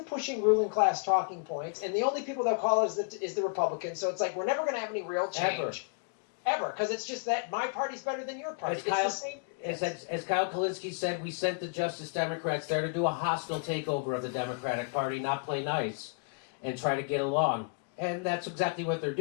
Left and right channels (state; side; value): quieter; right; 35.8 dB